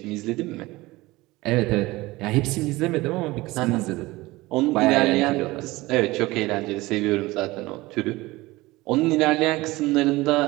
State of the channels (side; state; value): left; quieter; 20.2 dB